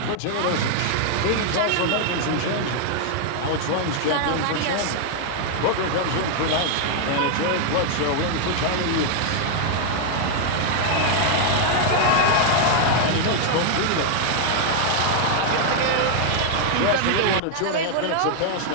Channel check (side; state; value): both; different; correlation 0.00